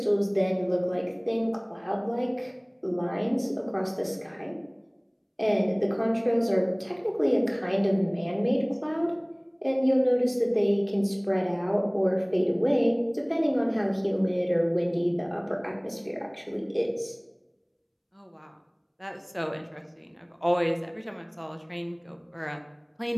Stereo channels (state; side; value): identical; both; correlation 1.00